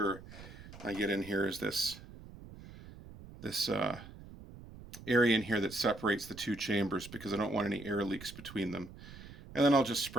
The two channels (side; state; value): right; noise; rumble, 16 dB below the sound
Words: I get in here is this area in here that separates the two chambers, because I don't want any air leaks between them. And then I'll just